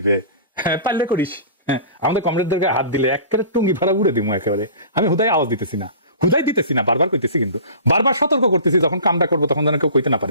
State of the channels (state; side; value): inverted; both; correlation -0.40